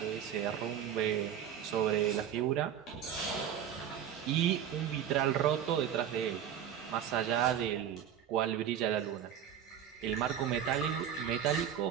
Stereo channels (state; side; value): quieter; left; 9.4 dB